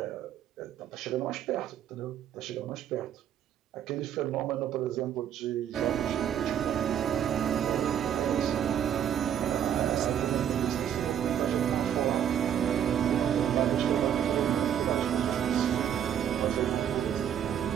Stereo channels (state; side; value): quieter; left; 9.5 dB